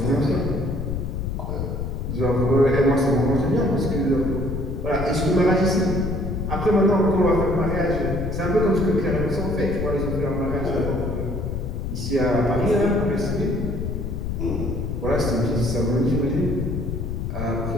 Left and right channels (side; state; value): left; noise; rumble, 3 dB below the sound